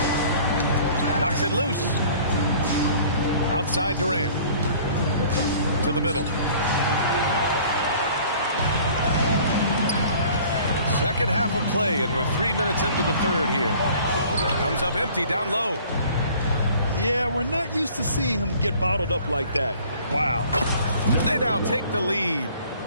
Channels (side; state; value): both; inverted; correlation -0.51